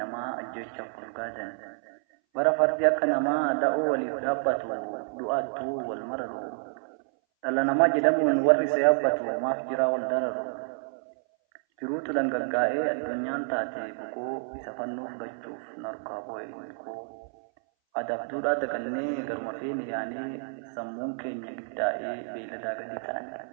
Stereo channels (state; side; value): silent; left; 59 dB below the other